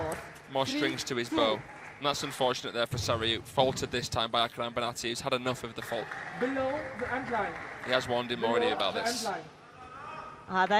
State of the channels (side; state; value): both; identical; correlation 1.00